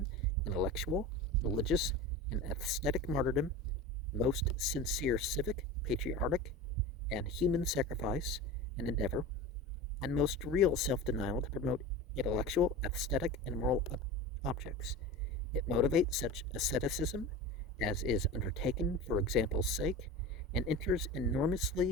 intellectual, religious, and aesthetic martyrdom, most sincere civic, patriotic, and human sacrifice and endeavor, and most real self-denial to promote intellectual, aesthetic, and moral objects. It motivates such asceticism as is undertaken for example's sake, and enters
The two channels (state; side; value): normal; both; correlation 0.30